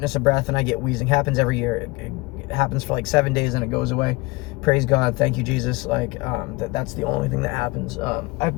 of breath and I get wheezing. Happens every year. It happens for like 7 days and it goes away. Praise God. Thank you, Jesus. Like, that's the only thing that happens. I've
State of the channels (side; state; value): right; quieter; 23.9 dB